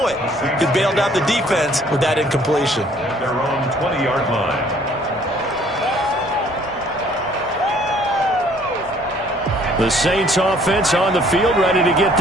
it. He bailed out the defense with that incompletion. At their own 20-yard line. The Saints offense on the field, ready to get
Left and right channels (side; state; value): both; normal; correlation 0.59